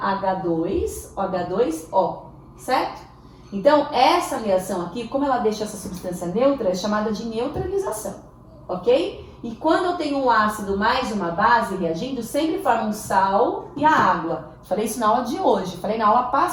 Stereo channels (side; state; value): both; identical; correlation 1.00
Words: OH2O, certo? Então, essa reação aqui, como ela deixa essa substância neutra, é chamada de neutralização, ok? E quando eu tenho um ácido mais uma base reagindo, sempre forma um sal e a água. Falei isso na aula de hoje, falei na aula